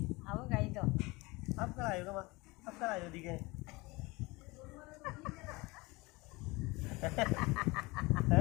अब गई तो अब कल आएगा माँ अब कल आएगा दिखे हैं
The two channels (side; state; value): right; quieter; 23.6 dB